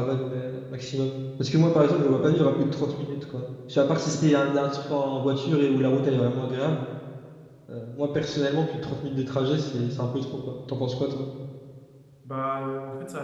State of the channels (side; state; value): both; identical; correlation 1.00